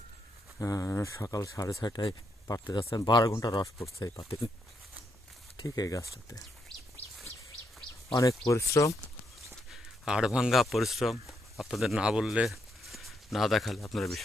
সকাল 6:30টায় পাড়তে যাচ্ছেন। 12 ঘন্টা রস পড়ছে এই পাতে, ঠিক এই গাছটাতে। অনেক পরিশ্রম, হাড়ভাঙ্গা পরিশ্রম। আপনাদের না বললে, না দেখালে আপনারা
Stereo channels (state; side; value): normal; both; correlation 0.79